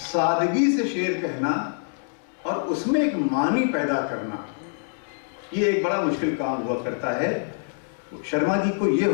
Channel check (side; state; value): right; silent; 62 dB below the other